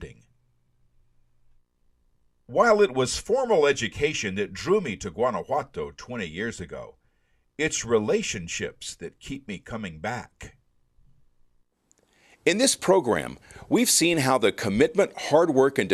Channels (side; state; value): both; identical; correlation 1.00